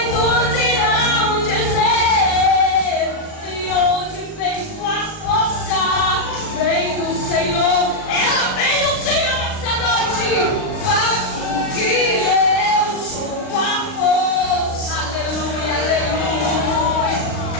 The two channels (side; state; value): right; late; 39 ms